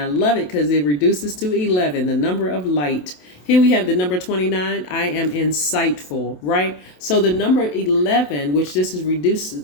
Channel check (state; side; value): late; right; 27 ms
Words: love it because it reduces to 11, the number of light. Here we have the number 29. I am insightful, right? So the number 11, which this is